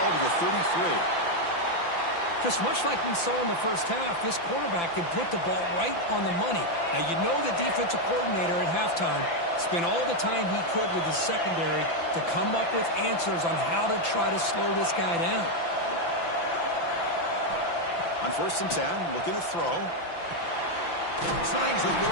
to the 33. Just much like we saw in the first half, this quarterback can put the ball right on the money. Now, you know the defensive coordinator at halftime spent all the time he could with his secondary to come up with answers on how to try to slow this guy down. On first and 10, looking to throw. Snags with the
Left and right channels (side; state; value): right; late; 5.9 ms